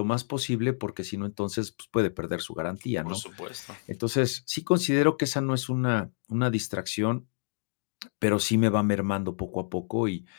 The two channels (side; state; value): right; silent; 57 dB below the other